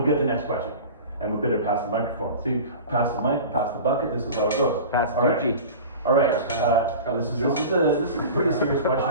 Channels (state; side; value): inverted; both; correlation -0.35